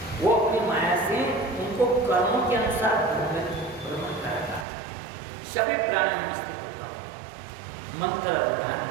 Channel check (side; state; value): left; drops out; at 4.7 s